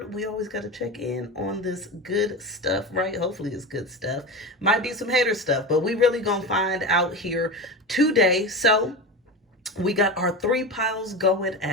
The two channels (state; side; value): normal; both; correlation 0.24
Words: We always got to check in on this good stuff, right? Hopefully it's good stuff. Might be some hater stuff, but we really gonna find out here today. So we got our three piles going